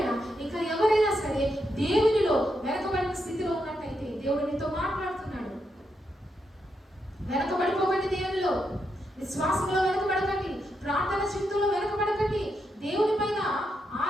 ఇంకా ఎవరైనా సరే దేవునిలో వెనకబడిన స్థితిలో ఉన్నట్టయితే దేవుడు నీతో మాట్లాడుతున్నాడు. వెనకబడిపోకండి, దేవునిలో విశ్వాసంలో వెనకబడకండి, ప్రార్థన చింతలో వెనకబడకండి, దేవుని పైన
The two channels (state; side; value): normal; both; correlation 0.82